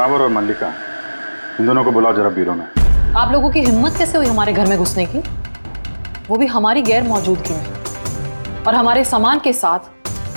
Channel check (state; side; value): inverted; both; correlation -1.00